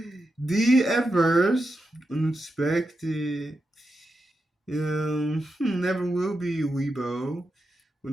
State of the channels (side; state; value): both; normal; correlation 0.88